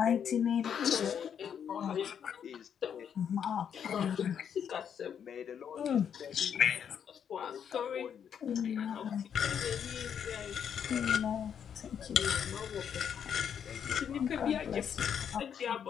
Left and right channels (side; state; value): right; quieter; 8.1 dB